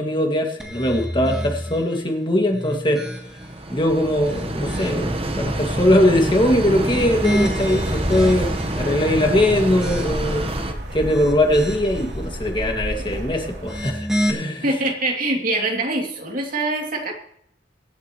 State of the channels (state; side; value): normal; both; correlation 0.69